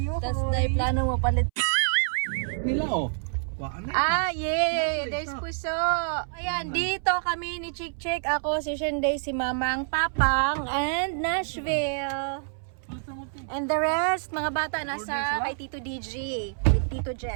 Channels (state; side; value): silent; left; 60 dB below the other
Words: Tas dahil plano mo palit. Nila oh. Waan na. Ah, yeah! There's puso! Ayan, dito kami ni Chick Chick. Ako, si Shenday, si Mamang, Papang, and Nashville. And the rest, mga bata, nasa kay Tito DJ, with Tito